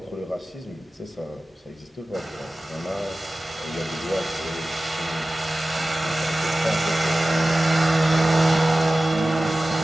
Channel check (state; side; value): normal; both; correlation 0.96